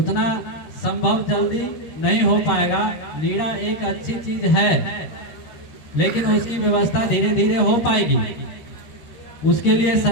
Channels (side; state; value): right; late; 13 ms